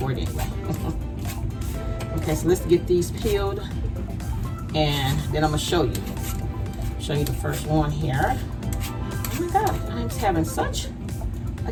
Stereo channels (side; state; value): both; identical; correlation 1.00